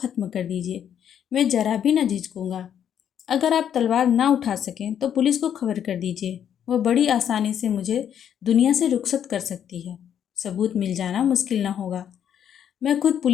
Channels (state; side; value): quieter; right; 9.2 dB